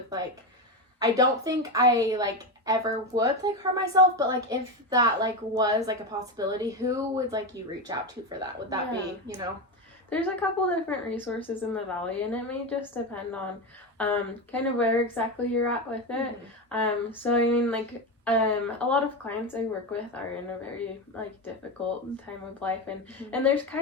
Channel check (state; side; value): normal; both; correlation 0.16